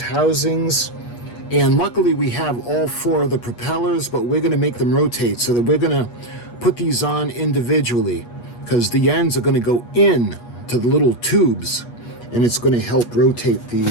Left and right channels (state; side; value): late; right; 8.3 ms